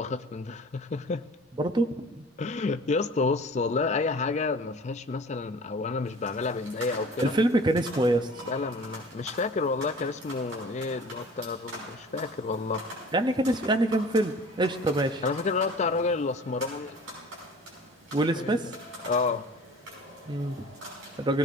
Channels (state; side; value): normal; both; correlation 0.44